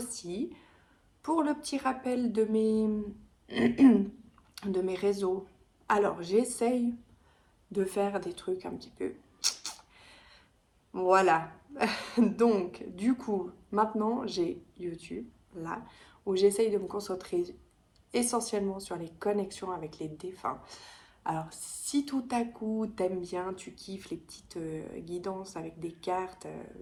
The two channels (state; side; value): identical; both; correlation 1.00